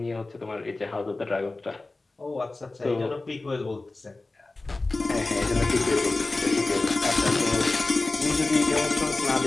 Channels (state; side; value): quieter; right; 3.2 dB